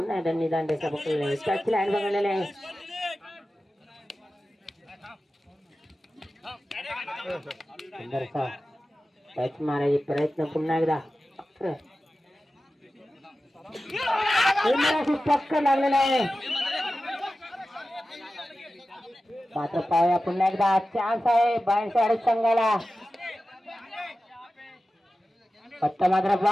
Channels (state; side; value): normal; both; correlation 0.94